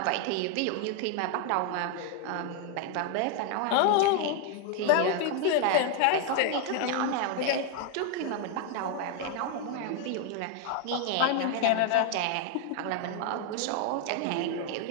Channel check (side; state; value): both; different; correlation 0.01